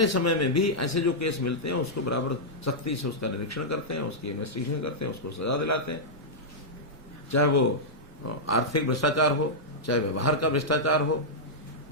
समय में भी ऐसे जो केस मिलते हैं उसको बराबर सख्ती से उसका निरीक्षण करते हैं, उसकी इन्वेस्टिगेशन करते हैं, उसको सजा दिलाते हैं। चाहे वो आर्थिक भ्रष्टाचार हो, चाहे व्यवहार का भ्रष्टाचार हो,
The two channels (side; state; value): both; normal; correlation -0.08